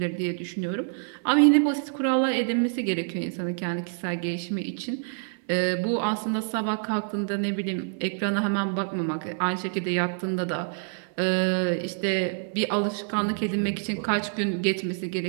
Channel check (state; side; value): silent; left; 58 dB below the other